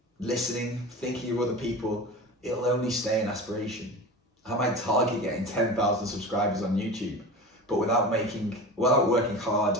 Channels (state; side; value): normal; both; correlation 0.31